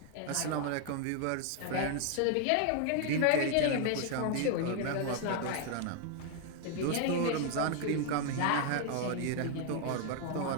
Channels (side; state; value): both; different; correlation 0.00